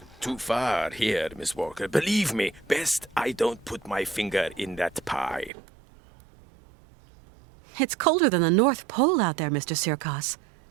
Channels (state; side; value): drops out; left; at 5.5 s